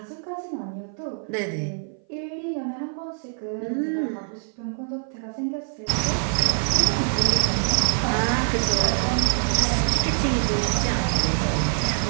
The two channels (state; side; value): silent; left; 57 dB below the other